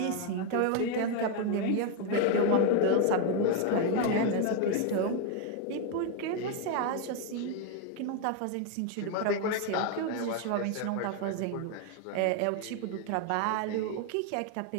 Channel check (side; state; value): both; different; correlation 0.01